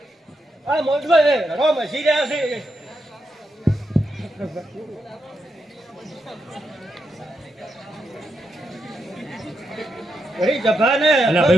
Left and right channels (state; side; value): normal; both; correlation 0.83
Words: આ મોજમાં હે રો મસી રહ્યા છે ઘણી જભા ને અલા